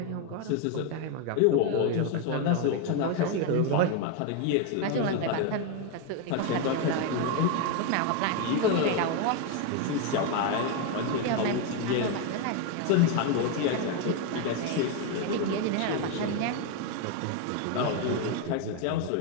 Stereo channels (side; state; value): both; different; correlation 0.01